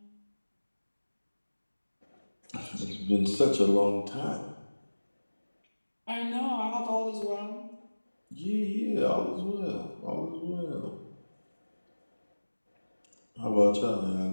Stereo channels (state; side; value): inverted; both; correlation -1.00